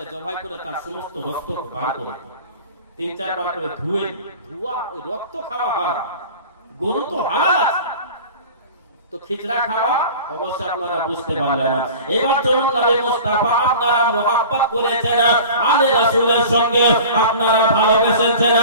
জবাই করে তার সমস্ত রক্ত বার করে 3-4 বার করে ধুয়ে ধোয়া, ওই রক্ত খাওয়া হারাম। গরু তো হালাল আছে, তো খিচড়া খাওয়া অবশ্যই আপনারা বুঝতে পারলেন। এবার চলুন নবী মুস্তাফা আপনারা মুহাব্বত করেছেন, আলে রাসূলের সঙ্গে আপনারা ভালোবেসেছেন,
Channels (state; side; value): inverted; both; correlation -0.40